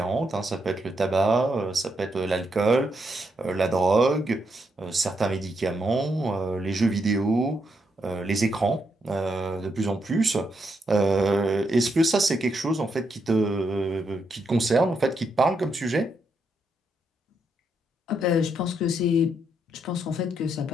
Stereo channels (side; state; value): both; normal; correlation 0.79